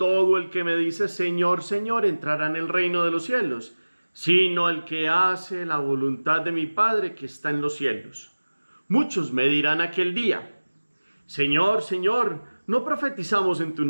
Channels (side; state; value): both; inverted; correlation -1.00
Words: el que me dice Señor, Señor entrará en el reino de los cielos, sino el que hace la voluntad de mi Padre que está en los cielos. Muchos me dirán aquel día: Señor, Señor, ¿no profetizamos en tu